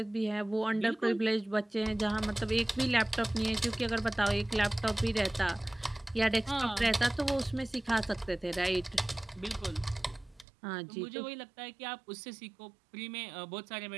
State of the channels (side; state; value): left; drops out; at 10.5 s